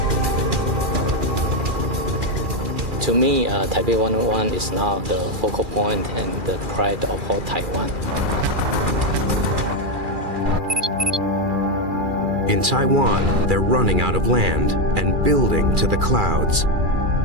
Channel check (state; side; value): late; left; 2.4 ms